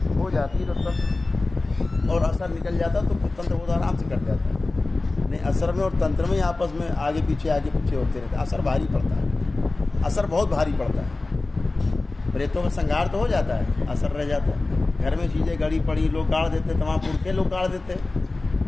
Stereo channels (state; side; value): quieter; right; 3.2 dB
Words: हो जाती है तब, और असर निकल जाता तो तंत्र बहुत आराम से कट जाता है। नहीं, असर में और तंत्र में आपस में आगे पीछे होते रहते, असर भारी पड़ता है, असर बहुत भारी पड़ता है। प्रेतों में संहार तो हो जाता है, असर रह जाता है। घर में चीज़ें गड़ी पड़ी लोग गाड़ देते, तमाम पुरखे लोग गाड़ देते,